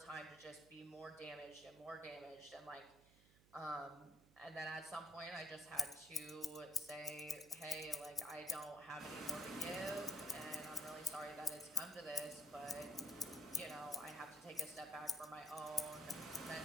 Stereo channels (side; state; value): right; noise; hum, 24 dB below the sound